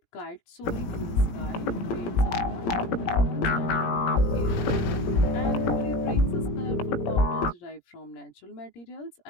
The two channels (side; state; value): right; late; 17 ms